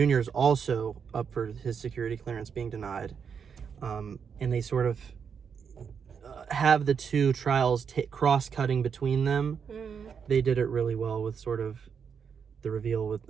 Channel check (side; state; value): left; quieter; 6.7 dB